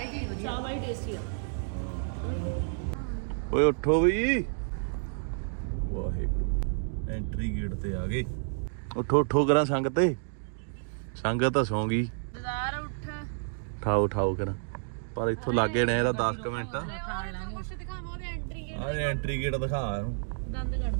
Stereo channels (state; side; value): silent; left; digital silence